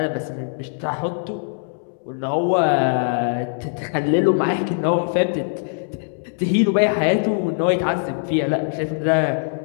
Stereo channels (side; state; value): right; silent; 64 dB below the other